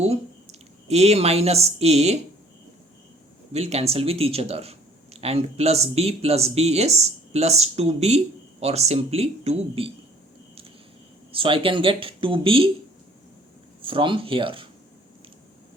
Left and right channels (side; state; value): both; normal; correlation 0.56